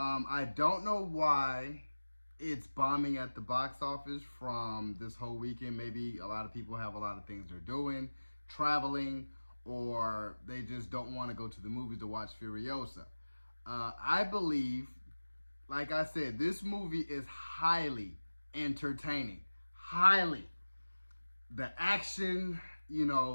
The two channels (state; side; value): inverted; both; correlation -1.00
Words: don't know why it's bombing at the box office from this whole weekend. Maybe a lot of people have a lot of things they're doing, traveling, or they just don't want to go to the movies to watch Furiosa. I believe, like I said, this movie is highly entertaining. Highly. The action,